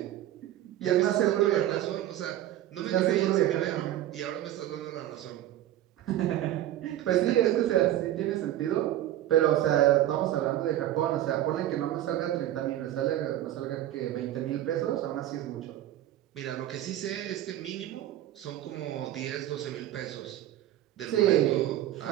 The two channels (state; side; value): quieter; left; 13.0 dB